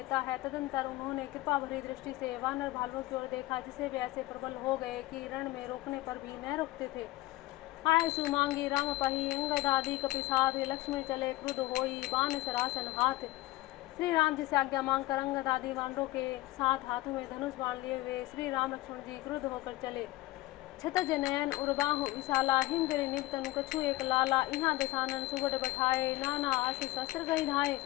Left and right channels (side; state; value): right; quieter; 18.4 dB